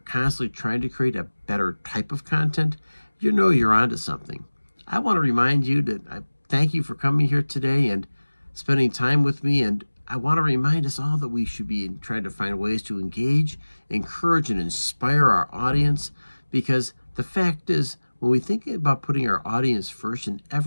trying to create a better type of content, you know you're onto something. I want to remind you that I thank you for coming here today and spending time with me, and I want to remind us all that we should be trying to find ways to engage, encourage, and inspire our audience, because the fact is, when we think about putting our audience first in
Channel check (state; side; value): inverted; both; correlation -1.00